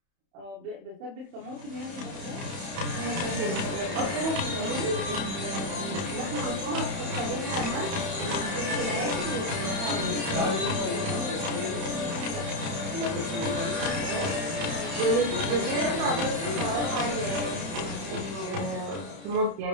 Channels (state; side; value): late; left; 31 ms